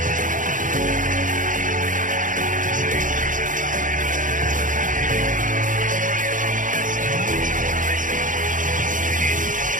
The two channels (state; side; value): late; left; 0.38 ms